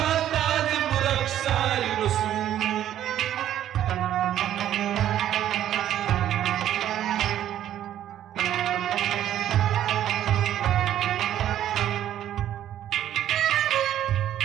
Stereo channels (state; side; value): quieter; left; 11.5 dB